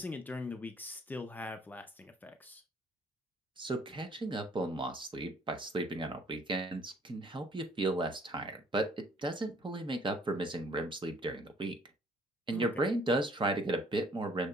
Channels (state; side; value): normal; both; correlation 0.59